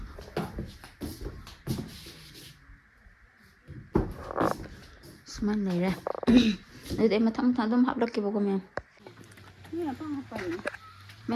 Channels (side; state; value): both; identical; correlation 1.00